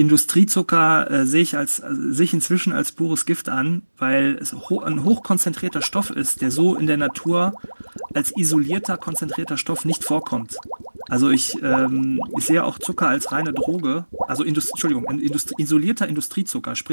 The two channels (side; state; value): both; inverted; correlation -1.00